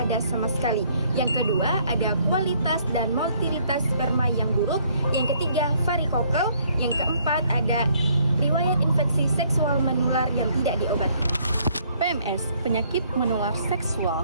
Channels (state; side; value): inverted; both; correlation -0.65